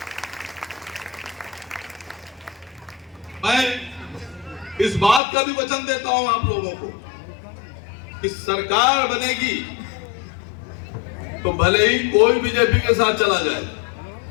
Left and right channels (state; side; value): drops out; right; at 5.2 s